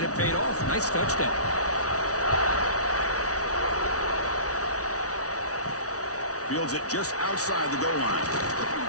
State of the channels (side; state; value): right; late; 0.67 ms